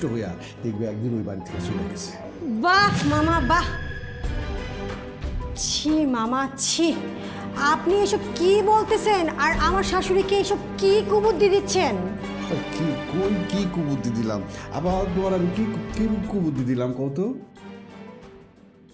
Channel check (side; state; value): both; identical; correlation 1.00